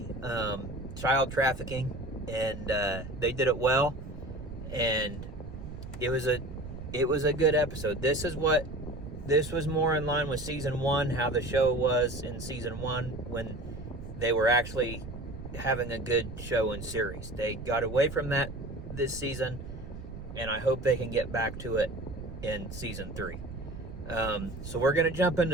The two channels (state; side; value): noise; right; rumble, 11 dB below the sound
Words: child trafficking, and they did it well, and it was a good episode. This was more in line with season 1, how the show was in season 1 when they were actually having a good show and series. They got away from that this season, and I hope they can get back to it in season 3. So we're going to jump